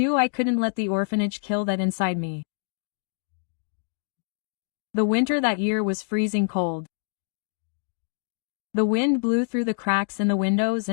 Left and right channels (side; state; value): right; silent; digital silence